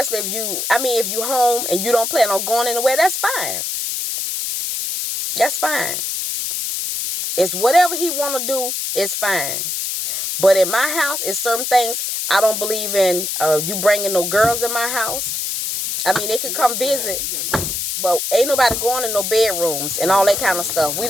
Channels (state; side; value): noise; left; hiss, 2 dB below the sound